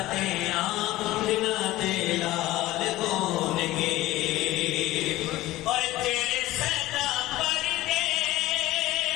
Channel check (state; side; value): quieter; right; 17.0 dB